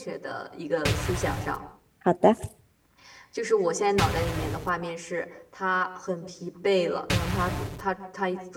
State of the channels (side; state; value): both; identical; correlation 1.00